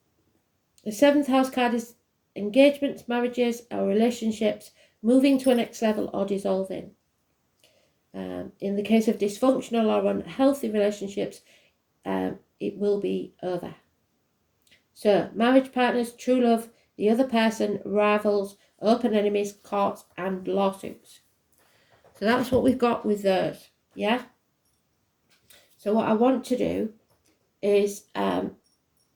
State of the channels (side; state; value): both; identical; correlation 1.00